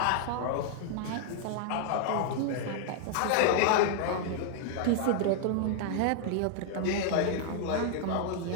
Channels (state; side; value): different; both; correlation 0.00